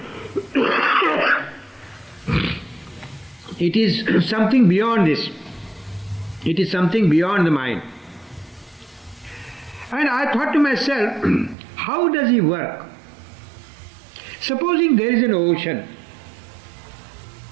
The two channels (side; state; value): left; drops out; at 11.6 s